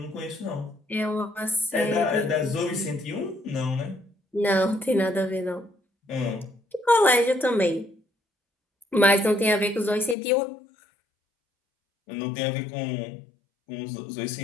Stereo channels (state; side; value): drops out; right; at 10.2 s